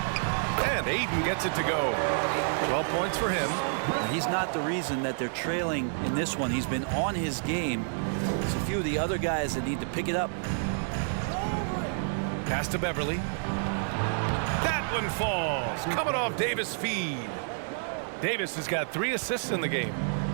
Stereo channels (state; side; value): silent; left; 58 dB below the other